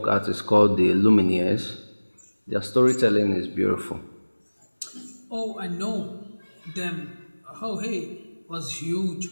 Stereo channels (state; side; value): inverted; both; correlation -1.00